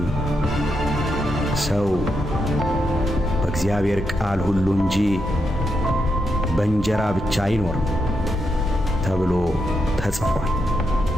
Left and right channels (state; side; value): normal; both; correlation 0.83